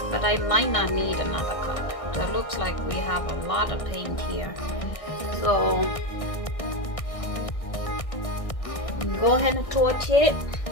but I might not need another cup. So it looks like we have a lot of paint here. So go ahead and torch it.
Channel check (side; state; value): right; late; 1.6 ms